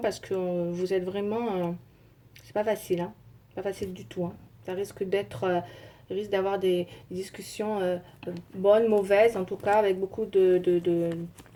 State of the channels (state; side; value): identical; both; correlation 1.00